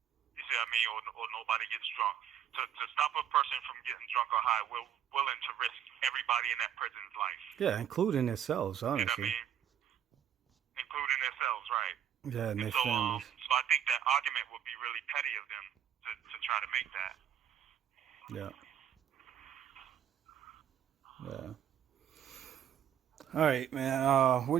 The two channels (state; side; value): quieter; left; 9.6 dB